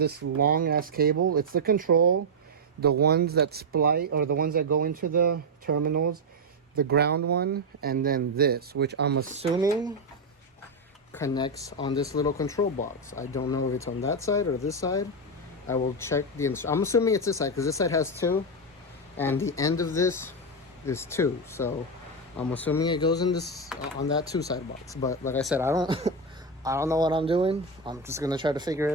long ass cable, it's the control, the ones that splice, or the ones that go into the terminals, the ground one, and then this, which I'm assuming connects on this little control box. I don't know if it's on that side or this side. I will check I'm assuming it's this side, because this side has 2, and the end of this is 2. So I'm assuming it goes in this, on that 2 side box. But like I said, I don't know what I'm doing. I'm just gonna try to figure it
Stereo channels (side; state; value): both; normal; correlation 0.04